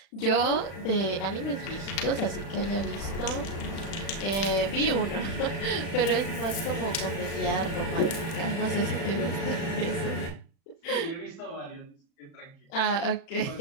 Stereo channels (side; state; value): right; late; 36 ms